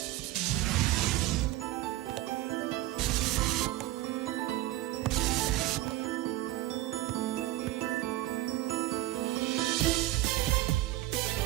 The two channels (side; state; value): left; quieter; 16.6 dB